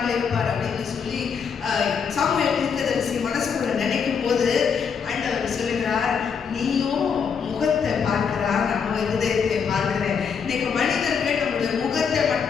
இருப்பார் அப்படின்னு சொல்லி சாமுவேல் தீர்க்கதரிசி மனசுக்குள்ள நினைக்கும் போது ஆண்டவர் சொல்லுகிறார், நீயும் முகத்தை பார்க்கிறார், நம்ம இருதயத்தை பார்க்கிறேன். இன்னைக்கு மனிதர்கள் நம்முடைய முகத்தை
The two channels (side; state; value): right; quieter; 6.5 dB